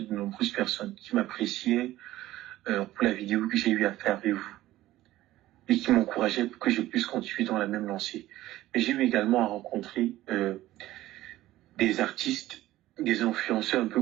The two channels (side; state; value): left; quieter; 15.6 dB